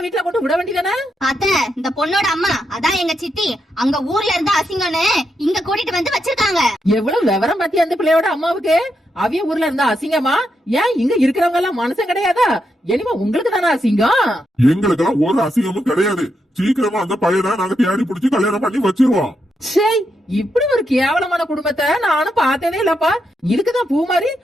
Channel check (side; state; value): both; normal; correlation 0.82